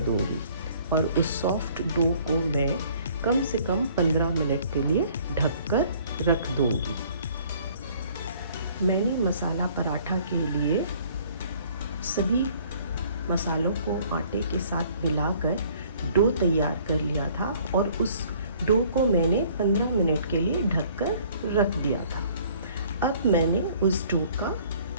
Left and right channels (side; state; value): both; inverted; correlation -0.57